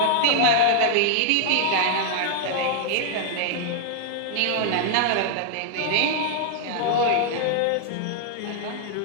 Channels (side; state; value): both; different; correlation 0.00